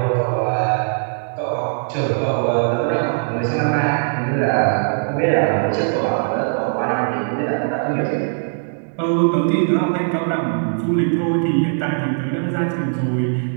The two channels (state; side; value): silent; left; digital silence